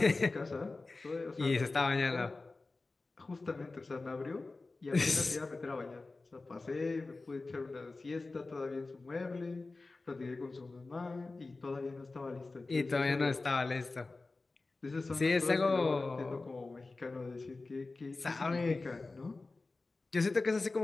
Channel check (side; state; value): right; quieter; 3.5 dB